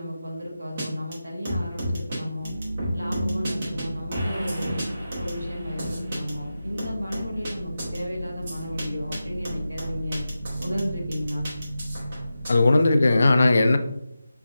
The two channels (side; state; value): both; inverted; correlation -0.92